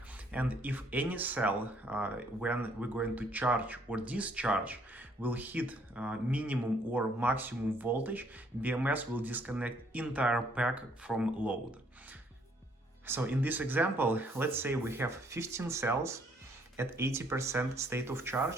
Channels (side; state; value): both; normal; correlation 0.66